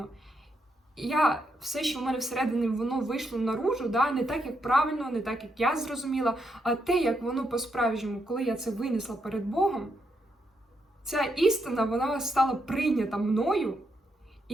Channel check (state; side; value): normal; both; correlation 0.80